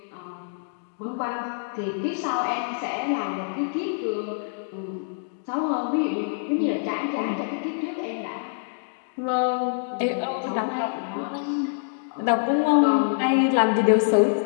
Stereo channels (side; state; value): right; silent; digital silence